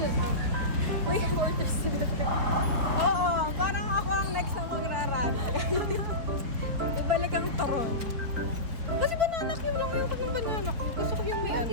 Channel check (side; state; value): left; late; 4.3 ms